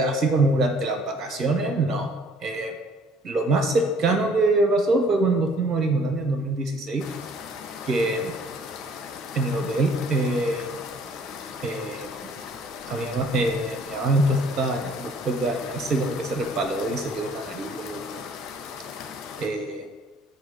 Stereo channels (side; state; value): both; normal; correlation 0.57